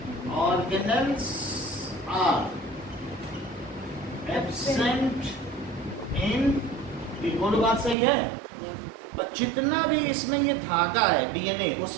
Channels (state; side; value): drops out; left; at 8.0 s